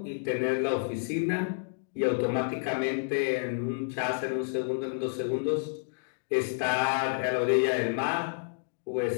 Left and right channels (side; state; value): right; silent; digital silence